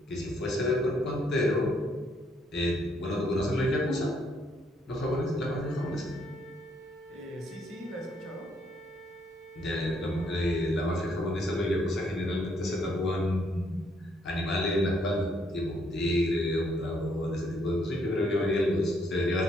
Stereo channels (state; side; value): normal; both; correlation 0.70